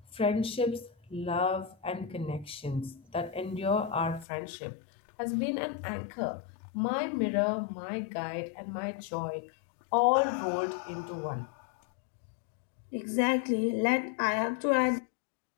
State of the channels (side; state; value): right; drops out; at 4.2 s